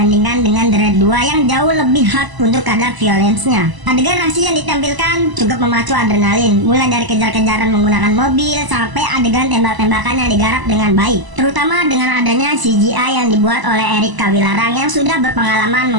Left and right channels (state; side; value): late; left; 1.0 ms